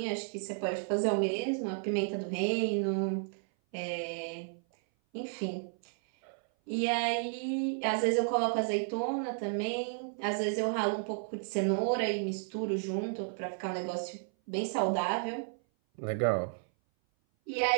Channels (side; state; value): left; silent; 56 dB below the other